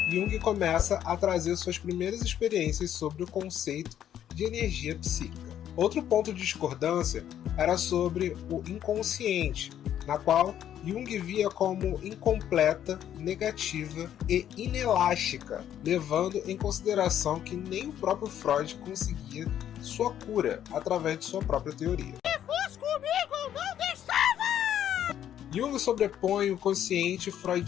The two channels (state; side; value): quieter; right; 10.5 dB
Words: Jung começa a trazer suas primeiras experiências sobre o conceito de energia psíquica. Outro ponto de discordância era sobre o inconsciente, na qual Jung via como incompleta, negativa e inelástica, levando em consideração que nem o próprio Freud conseguia sua cura através de sua própria teoria. Se fosse comigo, eu não deixava! Jung sobrepõe o consciente